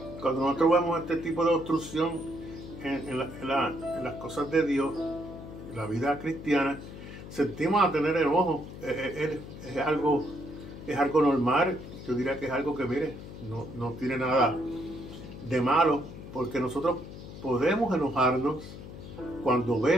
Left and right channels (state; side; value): noise; left; hum, 13 dB below the sound